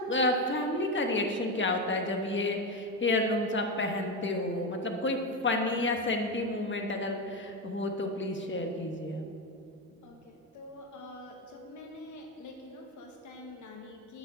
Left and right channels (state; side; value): normal; both; correlation 0.14